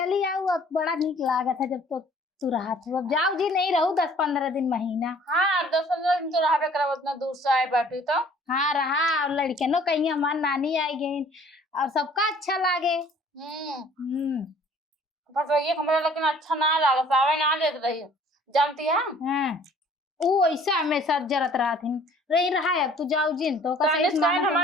आओ अब बड़ा नीक लागत है जब तो तू रहा तू अब जाओ जी नहीं रहू 10-15 दिन महीना। हाँ 10-15 दिन तो रहा करा उतना दूर से आए बैठू तो। हाँ रहा और लड़के नो कहीं हमार नानी आई गई और सबका अच्छा लागे। पर ये हमारा लेकिन अच्छा ना लगा सावे ना देत रही जानती है। हाँ वो ऐसा हमेशा जरत रहा थी रही रहा है अब तू जाओ जिन तो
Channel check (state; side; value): normal; both; correlation 0.54